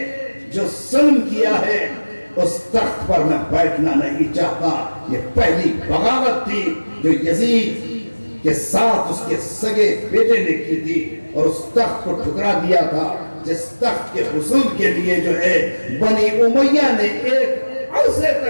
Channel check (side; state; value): both; inverted; correlation -1.00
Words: جو ظلم کیا ہے اس تخت پر میں بیٹھنا نہیں چاہتا. یہ پہلی بغاوت تھی جو یزید کے ساتھ اس کے سگے بیٹے نے کی تھی اور اس تخت کو ٹھکرا دیا تھا جس تخت کے حصول کے لیے جو ہے بنی امیہ نے ایک عرصے